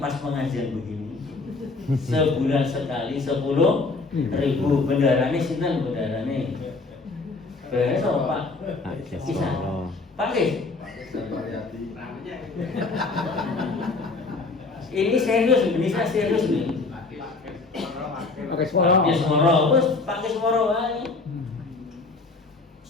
pas pengajian begini, sebulan sekali 10.000. Bendarane sinten bendarane? Besok Pak. Bisa. Pak Kis. Ini serius, ini saya serius nih. Pakai suara. Pakai suara, terus pakai suara wae.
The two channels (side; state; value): right; quieter; 3.8 dB